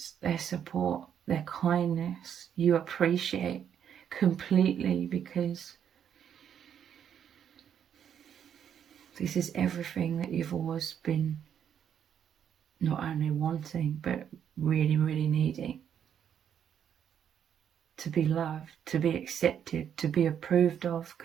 Their support, their kindness, you appreciate completely because this is everything that you've always been not only wanting, but really, really needing. To be loved, to be accepted, to be approved of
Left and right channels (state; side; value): quieter; left; 8.8 dB